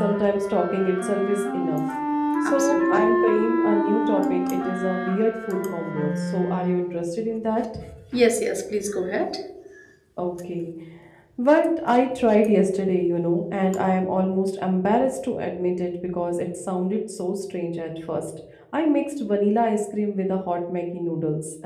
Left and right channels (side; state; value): both; identical; correlation 1.00